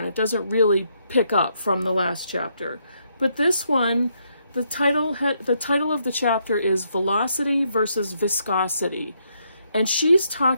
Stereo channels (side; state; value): both; inverted; correlation -0.75